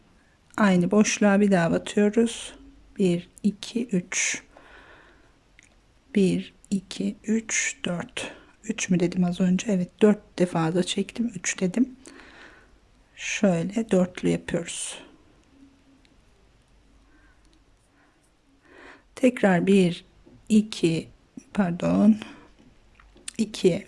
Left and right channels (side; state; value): both; identical; correlation 1.00